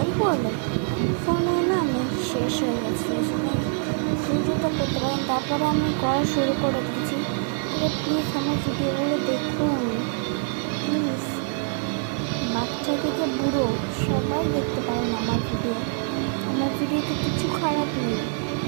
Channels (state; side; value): silent; left; 56 dB below the other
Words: বলে ফোনে না আমি শেষ হয়ে গেছে, ভিডিওটা করতে পারেন। তারপরে আমি করা শুরু করে দিয়েছি। প্লিজ আমার ভিডিওগুলো দেখুন, প্লিজ। বাচ্চা থেকে বুড়ো সবাই দেখতে পারেন আমার ভিডিওতে কিছু খারাপ নেই,